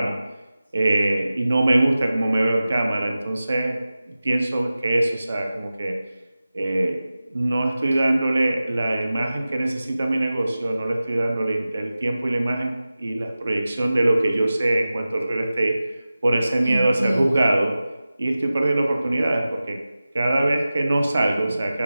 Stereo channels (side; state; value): both; inverted; correlation -0.95